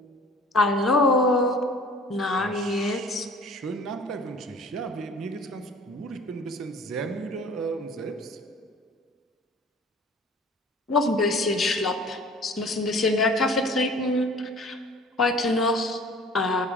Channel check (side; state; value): both; normal; correlation 0.47